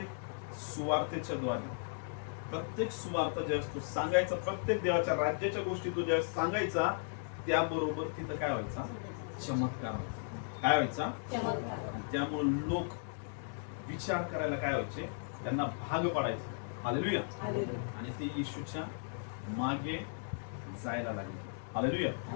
सुवार्तेच्या द्वारे, प्रत्येक सुवार्ता ज्यावेळेस तू सांगायचा, प्रत्येक देवाच्या राज्याच्या गोष्टी तू ज्यावेळेस सांगायचा, त्याबरोबर तिथं काय व्हायचा? चमत्कार व्हायचा. काय व्हायचा? चमत्कार. त्यामुळे लोक विचार करायला काय व्हायचे, त्यांना भाग पडायचे. हालेलुया. आणि ते येशूच्या मागे जायला लागले. हालेलुया.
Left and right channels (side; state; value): right; silent; digital silence